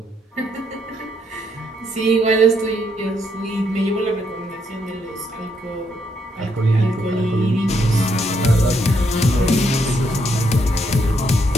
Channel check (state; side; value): normal; both; correlation 0.75